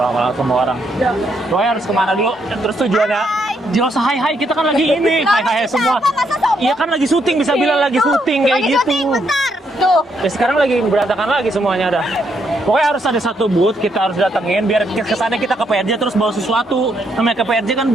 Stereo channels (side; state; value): both; normal; correlation 0.76